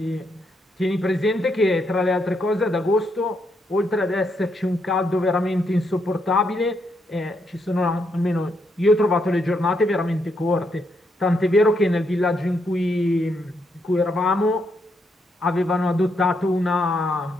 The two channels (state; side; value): normal; both; correlation 0.78